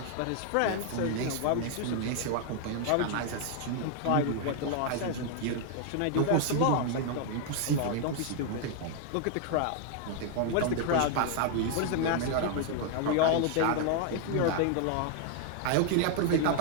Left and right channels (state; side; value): different; both; correlation 0.00